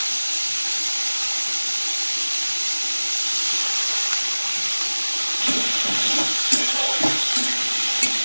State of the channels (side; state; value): both; inverted; correlation -1.00